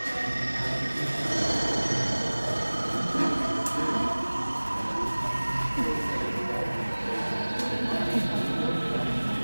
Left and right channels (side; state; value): both; inverted; correlation -1.00